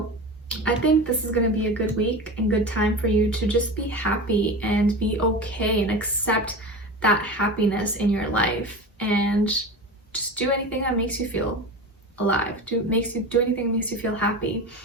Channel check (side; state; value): both; normal; correlation 0.28